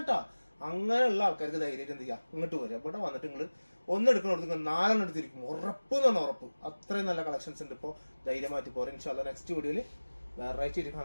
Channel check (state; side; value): inverted; both; correlation -1.00